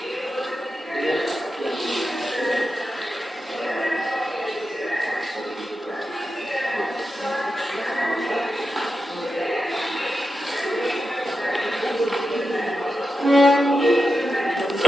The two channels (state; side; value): normal; both; correlation 0.89